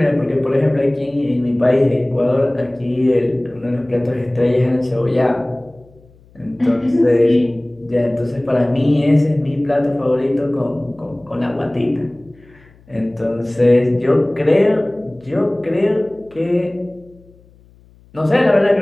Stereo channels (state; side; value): noise; left; hum, 28 dB below the sound